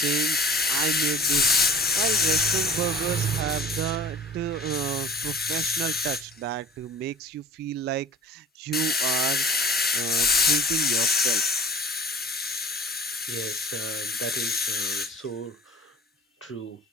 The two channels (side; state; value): both; normal; correlation 0.43